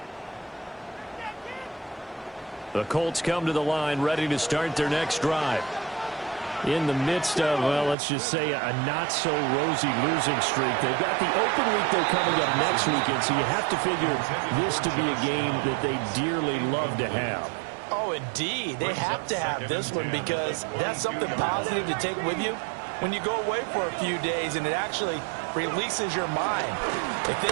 The Colts come to the line ready to start their next drive. In the midst of, well, let's just say a not-so-rosy losing streak. They've got the open week they're coming up next weekend, so you have to figure this to be a game that they dearly love to have. Oh, indeed. They have to have this one because that's something positive to take with you when you go away for a few days, and it actually releases your mind. If they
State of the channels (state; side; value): drops out; left; at 8.0 s